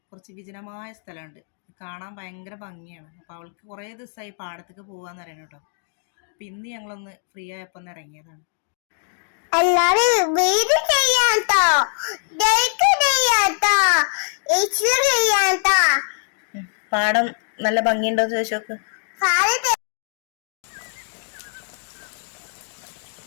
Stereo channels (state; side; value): silent; right; digital silence